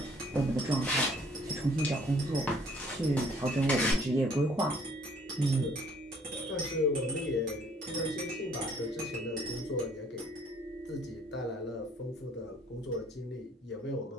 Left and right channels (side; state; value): both; normal; correlation 0.60